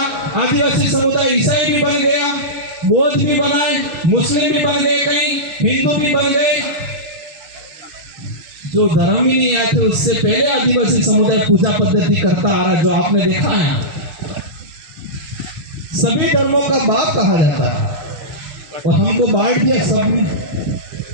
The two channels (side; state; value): left; late; 6.7 ms